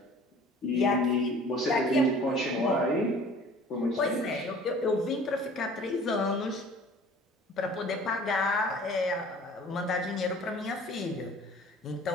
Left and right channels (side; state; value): both; normal; correlation 0.48